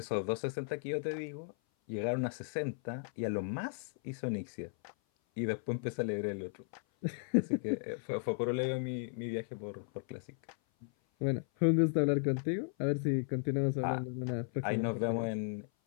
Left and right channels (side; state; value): right; silent; 54 dB below the other